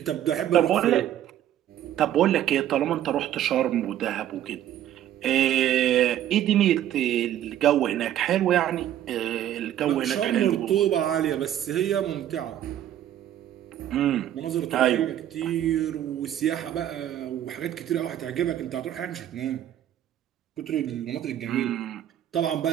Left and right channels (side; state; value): left; quieter; 11.6 dB